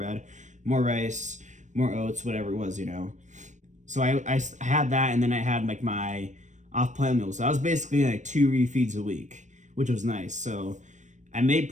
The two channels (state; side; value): late; left; 0.35 ms